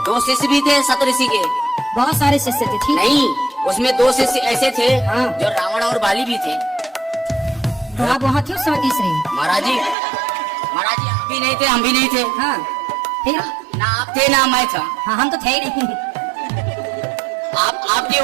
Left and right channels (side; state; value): left; drops out; at 10.0 s